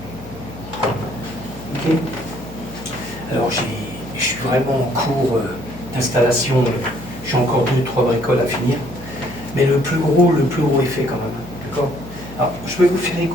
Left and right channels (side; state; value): left; noise; hum, 16 dB below the sound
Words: Ok. Alors, je suis vraiment en cours d'installation. J'ai encore 2-3 bricoles à finir. Mais le plus gros est fait quand même. D'accord? Alors, je vais vous faire